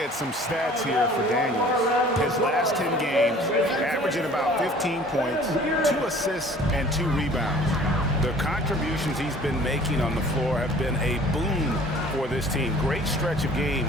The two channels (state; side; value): normal; both; correlation 0.49